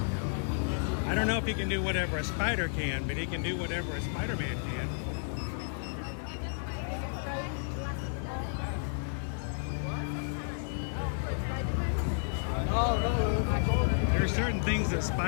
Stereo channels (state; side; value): silent; right; 57 dB below the other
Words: I don't know if he can do whatever a spider can, but he can do whatever a Spider-Man can. There are certain things that